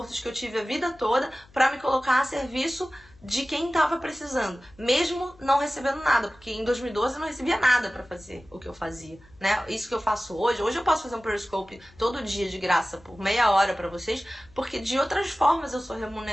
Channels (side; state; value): left; noise; hum, 27 dB below the sound